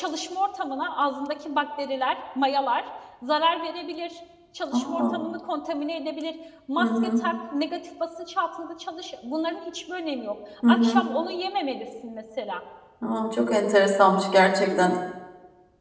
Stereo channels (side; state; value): both; identical; correlation 1.00